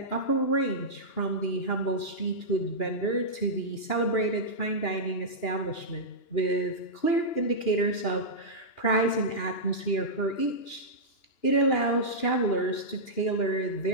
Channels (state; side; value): late; right; 2.9 ms